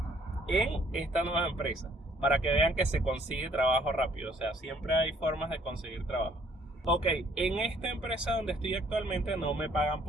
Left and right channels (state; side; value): normal; both; correlation 0.62